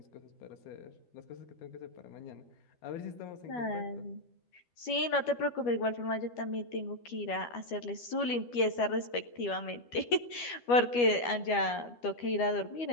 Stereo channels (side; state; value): right; late; 12 ms